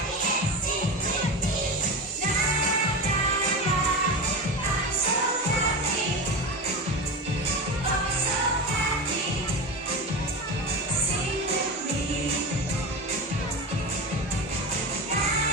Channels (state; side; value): normal; both; correlation 0.24